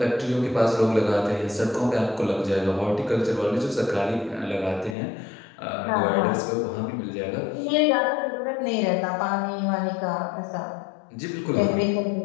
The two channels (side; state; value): right; drops out; at 5.0 s